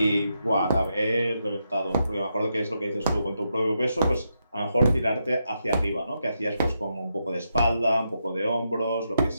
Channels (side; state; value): both; inverted; correlation -0.83